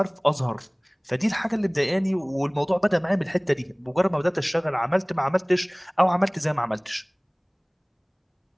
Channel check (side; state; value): both; identical; correlation 1.00